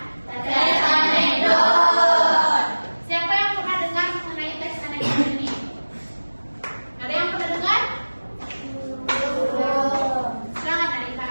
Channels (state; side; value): inverted; both; correlation -1.00